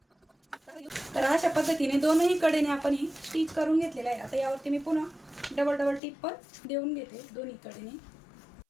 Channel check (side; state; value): right; drops out; at 6.0 s